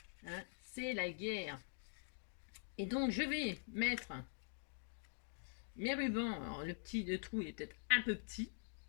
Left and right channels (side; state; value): right; silent; digital silence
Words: Hein, c'est la guerre. Et donc, je vais mettre mes rubans. Alors, le trou est peut-être un peu petit.